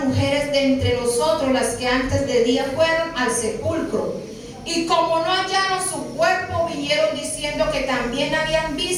mujeres de entre nosotros, las que antes de día fueron al sepulcro, y como no hallaron su cuerpo, vinieron diciendo que también habían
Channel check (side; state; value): both; identical; correlation 1.00